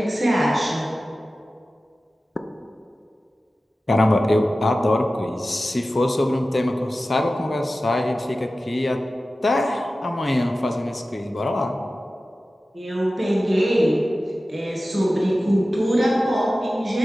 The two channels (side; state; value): both; normal; correlation 0.95